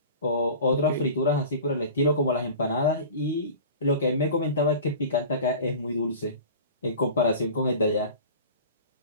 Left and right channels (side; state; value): both; inverted; correlation -0.38